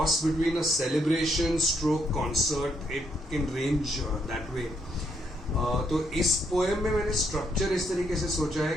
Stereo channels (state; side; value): normal; both; correlation 0.74